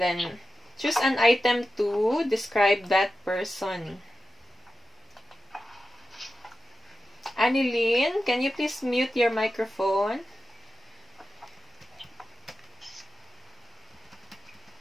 then choose an item to describe that person. Annalyn, can you please mute your microphone?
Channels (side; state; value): both; normal; correlation 0.92